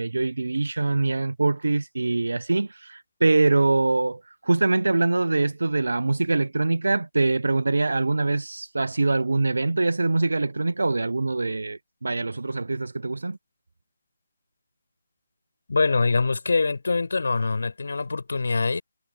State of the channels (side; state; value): both; inverted; correlation -0.96